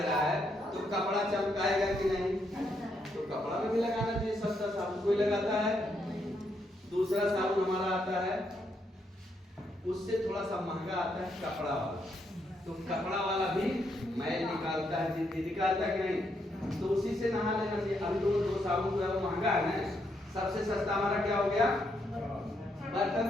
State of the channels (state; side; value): normal; both; correlation 0.77